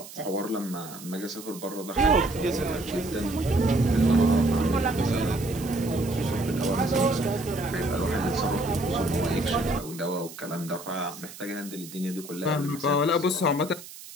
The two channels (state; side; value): noise; right; hiss, 15 dB below the sound